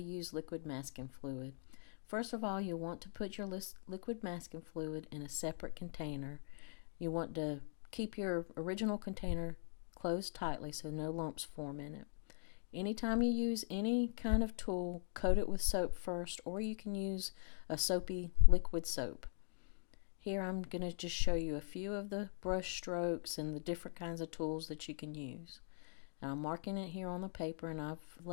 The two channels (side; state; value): right; silent; digital silence